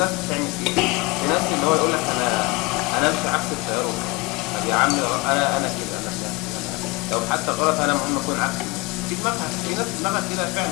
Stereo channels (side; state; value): right; quieter; 25.7 dB